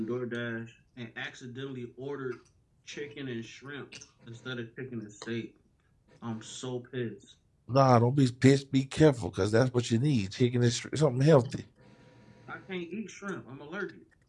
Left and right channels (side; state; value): both; identical; correlation 1.00